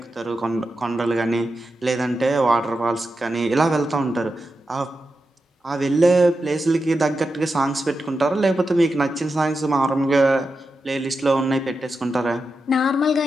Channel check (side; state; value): both; normal; correlation 0.89